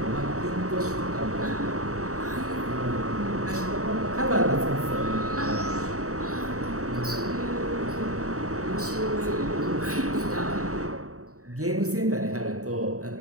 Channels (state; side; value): late; left; 0.65 ms